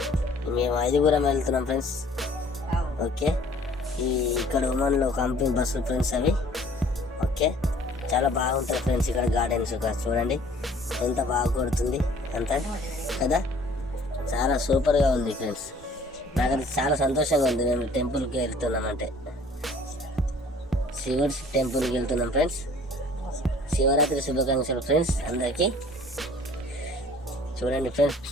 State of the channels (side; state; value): both; normal; correlation 0.53